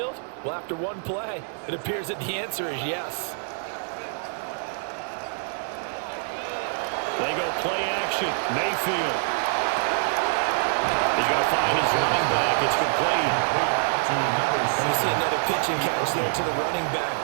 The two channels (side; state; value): left; silent; 61 dB below the other